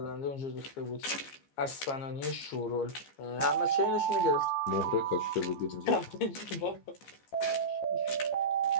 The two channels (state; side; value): late; right; 14 ms